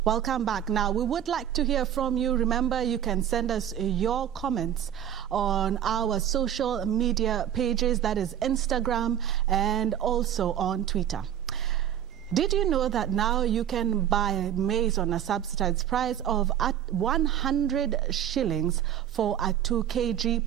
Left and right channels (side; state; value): left; quieter; 10.3 dB